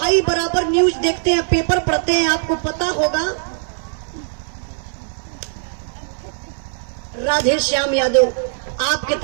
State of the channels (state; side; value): silent; left; 59 dB below the other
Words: बराबर न्यूज देखते हैं, पेपर पढ़ते हैं, आपको पता होगा राधे श्याम यादव आपके